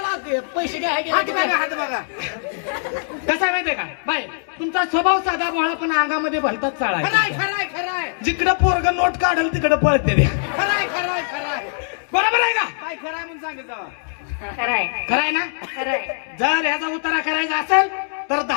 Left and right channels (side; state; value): right; silent; digital silence